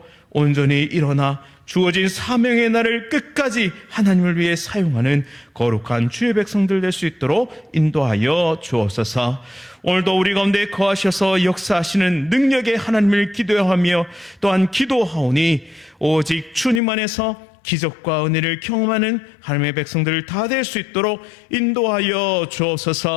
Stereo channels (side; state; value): right; drops out; at 16.8 s